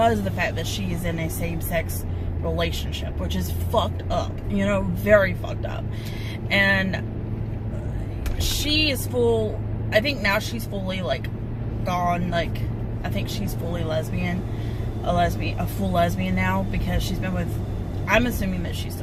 of the fact that she is in a same-sex relationship, which is fucked up, you know, very fucked up. And she is full, I think now she's fully like gone, like I think she's fully lesbian, a full lesbian now, because she's been with, I'm assuming that she's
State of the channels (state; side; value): identical; both; correlation 1.00